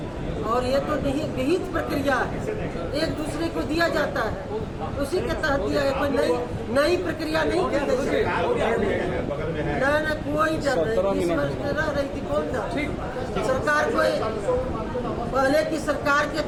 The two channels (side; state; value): both; identical; correlation 1.00